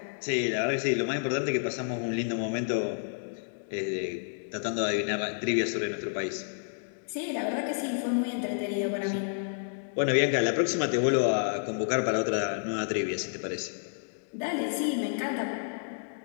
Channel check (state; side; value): silent; right; digital silence